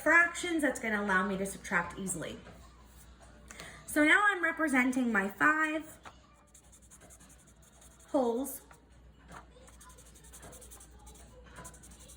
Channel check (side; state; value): both; identical; correlation 1.00